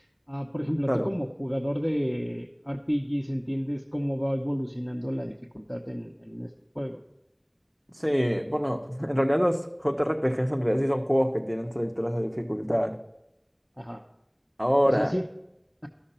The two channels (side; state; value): both; identical; correlation 1.00